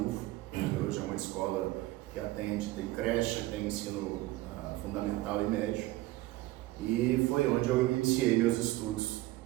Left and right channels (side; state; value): left; quieter; 18.1 dB